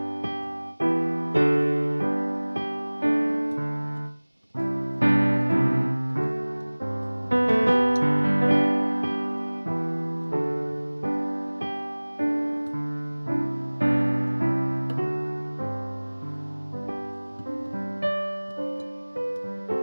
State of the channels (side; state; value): both; inverted; correlation -1.00